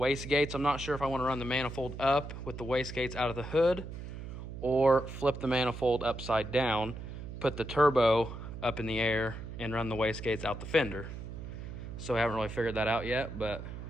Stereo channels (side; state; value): right; noise; hum, 9 dB below the sound